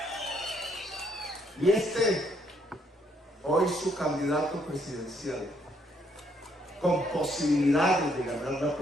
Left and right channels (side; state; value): both; normal; correlation 0.70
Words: y hoy su candidato presidencial, con posibilidades de ganar la